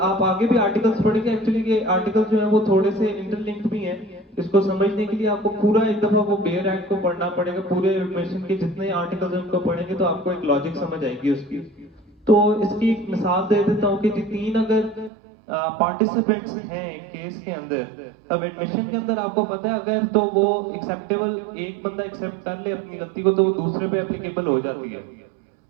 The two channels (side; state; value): left; drops out; at 15.1 s